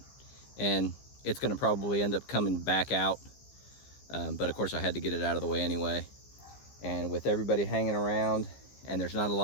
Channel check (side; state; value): right; late; 15 ms